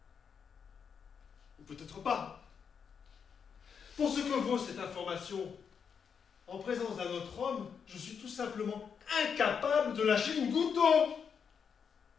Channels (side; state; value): right; quieter; 6.7 dB